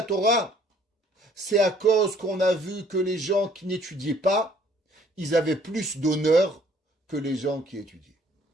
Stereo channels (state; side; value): normal; both; correlation 0.60